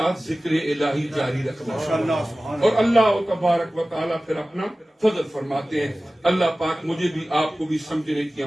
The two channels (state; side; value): normal; both; correlation 0.97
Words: ذکر الہی جاری رکھنا، اور اللہ تبارک و تعالیٰ پھر اپنا فضل فرماتے ہیں. اللہ پاک مجھے بھی آپ کو بھی سمجھنے کی